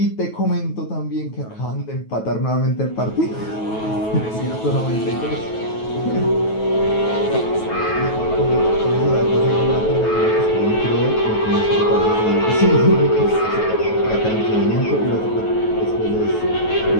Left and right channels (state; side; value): late; right; 9.3 ms